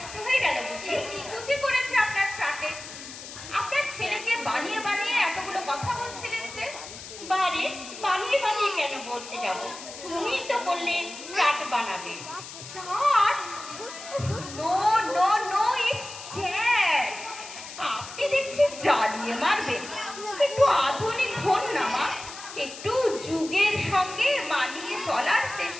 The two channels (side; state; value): left; noise; hiss, 13 dB below the sound